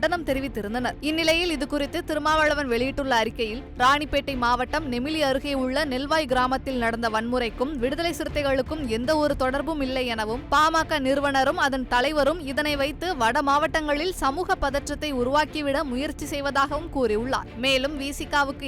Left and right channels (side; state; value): both; identical; correlation 1.00